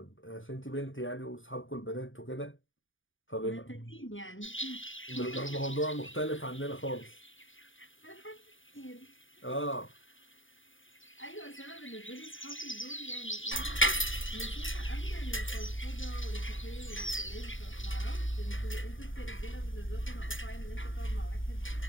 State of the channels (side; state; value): right; late; 0.57 ms